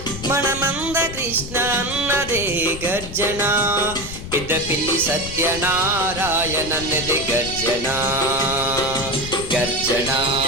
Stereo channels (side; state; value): left; noise; rumble, 10 dB below the sound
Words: మన మందకృష్ణ అన్నదే గర్జన పెద్దపిల్లి సత్యనారాయణన్నది గర్జన గర్జన